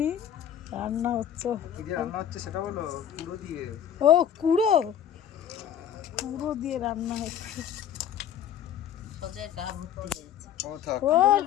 রান্না হচ্ছে। সেটা বলো। কুড়ো দিয়ে। ও কুড়ো, কুড়ো দিয়ে রান্না হচ্ছে। সজের গা ভর্তি হয়েছে।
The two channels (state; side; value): quieter; right; 9.6 dB